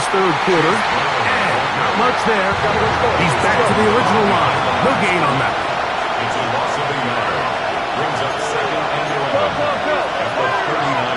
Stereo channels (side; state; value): both; identical; correlation 1.00